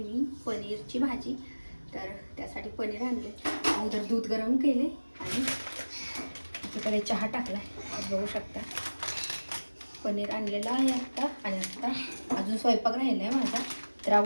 पनीरची भाजी. तर त्यासाठी पनीर आणले, अगोदर दूध गरम केले आणि तिकडे चहा टाकला आहे. बघू शकता पनीर आणलेलं आहे आत्ता. आणि आत्ता अजून स्वयंपाक राहिला आहे माझा. तर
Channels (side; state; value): both; inverted; correlation -1.00